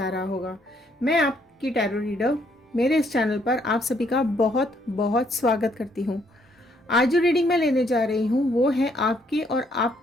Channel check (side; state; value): both; normal; correlation 0.70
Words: रहा होगा। मैं आपकी टैरो रीडर मेरे इस चैनल पर आप सभी का बहुत बहुत स्वागत करती हूँ। आज जो रीडिंग मैं लेने जा रही हूँ वो है आपके और